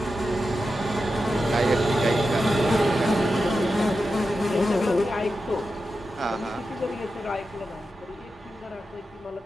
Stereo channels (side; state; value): both; normal; correlation 0.90